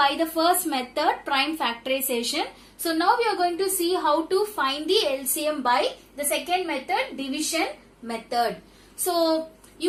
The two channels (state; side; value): identical; both; correlation 1.00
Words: the first method, prime factorization. So now we are going to see how to find the LCM by the second method, division method. So